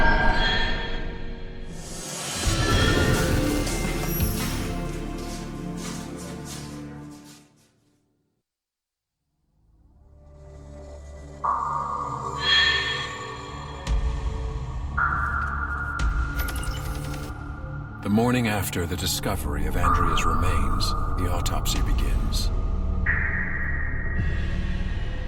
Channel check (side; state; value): both; identical; correlation 1.00